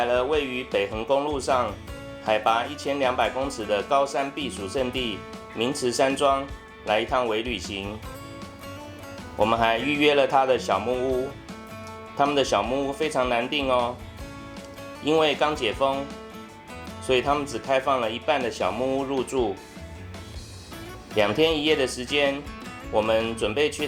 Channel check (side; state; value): both; identical; correlation 1.00